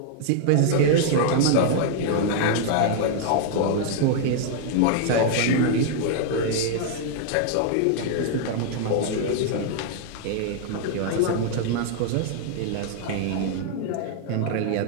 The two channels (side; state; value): both; different; correlation -0.01